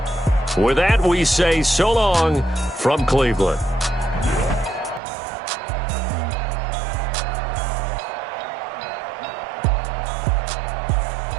With that, we say so long from Cleveland.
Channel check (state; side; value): drops out; left; at 5.0 s